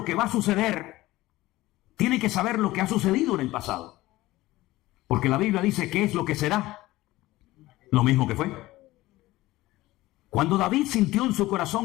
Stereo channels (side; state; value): right; quieter; 17.8 dB